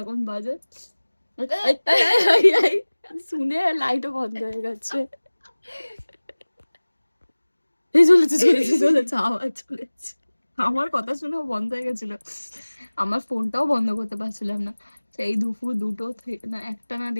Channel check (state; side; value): inverted; both; correlation -1.00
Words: এখন বাজে শুনে লাইটও বন্ধ হয়ে গেছে। এই চলেছে চলেছে চলেছে, আওয়াজ চলেছে। আমার কথা শুনেও বন্ধ হয়ে গেছিল, আমার ফোনটাও বন্ধ করতে পারছিলাম না। সেই দুপুর দুটো না একটা না